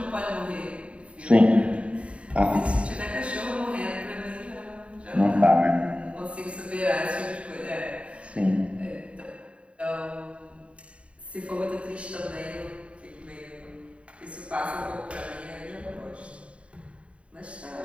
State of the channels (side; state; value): left; late; 0.061 ms